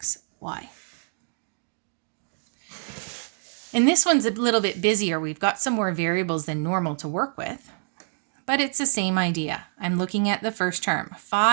And this one's a little bit busier. We've got some more variables than normal to work with, but it's the same idea. I'm looking at the first term,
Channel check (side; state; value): left; silent; digital silence